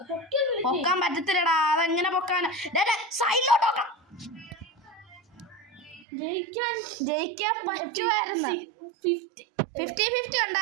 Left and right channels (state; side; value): drops out; left; at 6.1 s